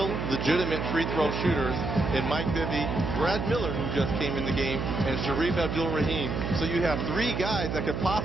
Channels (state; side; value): noise; right; hum, 3 dB below the sound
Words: legitimate free throw shooters in Mike Bibby, Brad Miller, who just came in the game, and Sharif Abdul-Rahim. So you have 3 guys that could